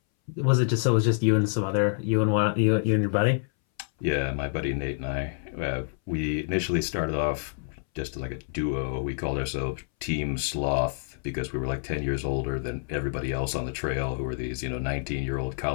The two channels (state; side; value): silent; right; 60 dB below the other